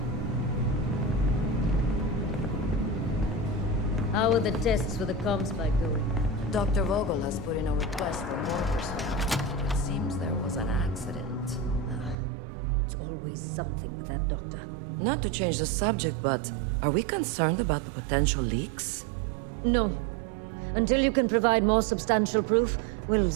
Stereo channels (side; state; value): left; drops out; at 12.2 s